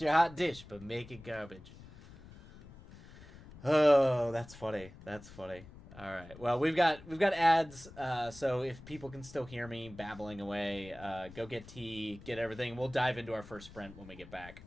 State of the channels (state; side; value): noise; left; rumble, 18 dB below the sound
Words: hot dish, but make it garbage. Oh, that's funny. That's funny. All right. Well, we've got ads. So if people can still hear me babbling away, go get tea, get everything. We'll dive into our first sprint when we get back.